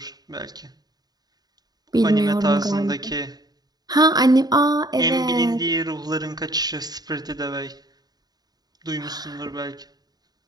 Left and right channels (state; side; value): late; left; 0.19 ms